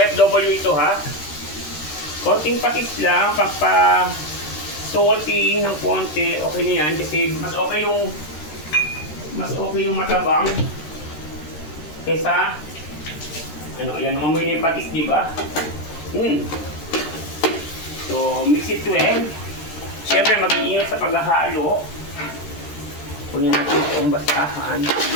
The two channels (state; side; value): late; right; 13 ms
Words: ito ha. Konting patis lang, pagpa salty ng konti, okay na yan kasi mas okay yung matabang kesa ano, ayan, mamoy na yung patis, di ba? So, mix it well. Siyempre, mag-iingat sa paghahalo. Kunin natin yung basahan.